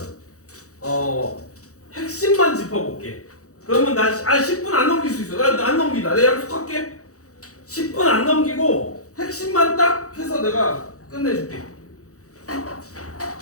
핵심만 짚어볼게. 그러면 나 10분 안 넘길 수 있어. 나 안 넘긴다. 내가 약속할게. 10분 안 넘기고 핵심만 딱 해서 내가 끝내줄게.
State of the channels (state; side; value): late; right; 0.65 ms